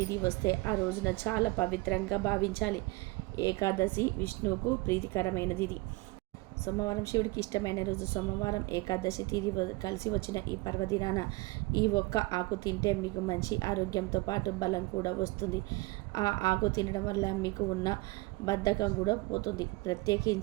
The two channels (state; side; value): quieter; left; 23.5 dB